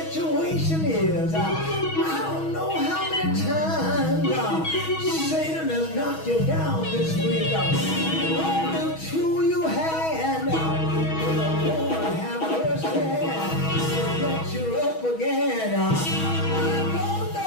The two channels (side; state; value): right; late; 6.2 ms